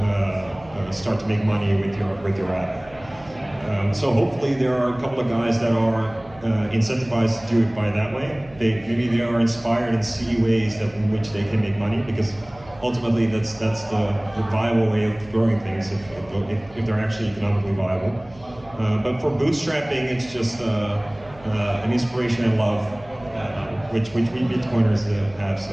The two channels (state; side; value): noise; right; hum, 22 dB below the sound